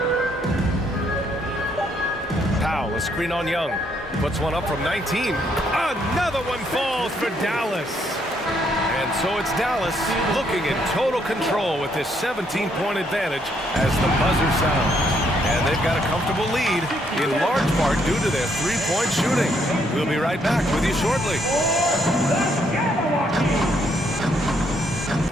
Powell, a screen on Young. Puts one up from 19. Another one falls for Dallas. And so it's Dallas looking in total control with this 17-point advantage as the buzzer sounds. And they've got a comfortable lead, in large part due to their three-point shooting. We'll be right back with you shortly.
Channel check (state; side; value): normal; both; correlation 0.72